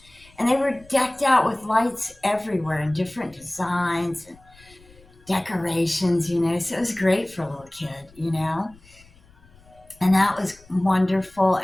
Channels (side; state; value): left; noise; rumble, 27 dB below the sound